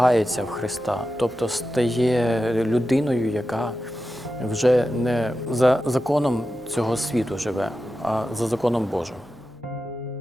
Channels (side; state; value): both; normal; correlation 0.92